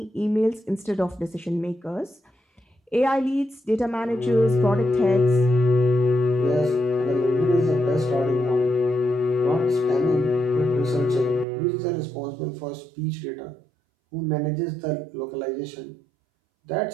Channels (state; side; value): drops out; left; at 11.5 s